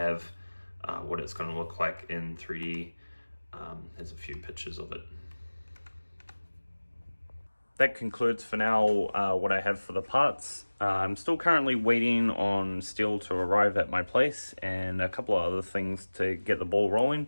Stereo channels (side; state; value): both; inverted; correlation -1.00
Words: what it's going to look like in 3D. There's a few pictures of it. That concludes for now what I have for the parts. I'm still currently waiting on steel to arrive at my place and a couple of other things to get the ball rolling.